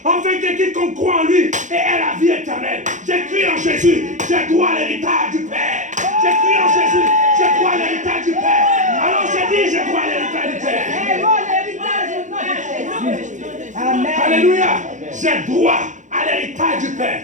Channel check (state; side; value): late; left; 0.36 ms